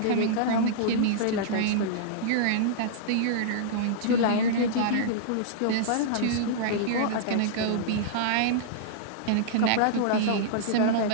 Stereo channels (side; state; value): both; different; correlation -0.02